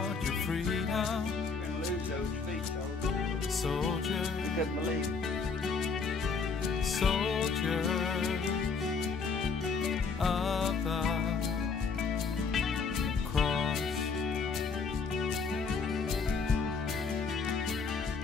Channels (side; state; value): right; quieter; 5.0 dB